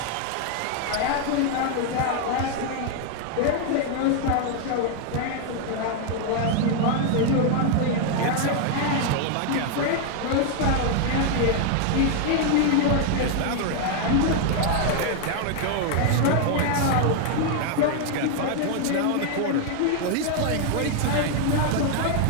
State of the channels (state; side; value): different; both; correlation 0.00